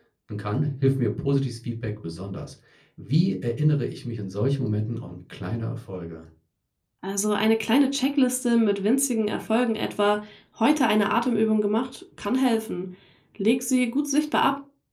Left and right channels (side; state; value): both; identical; correlation 1.00